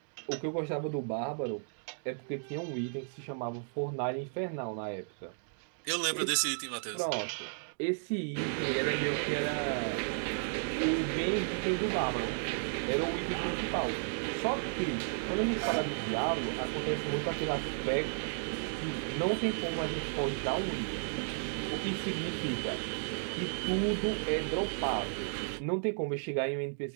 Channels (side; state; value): left; silent; digital silence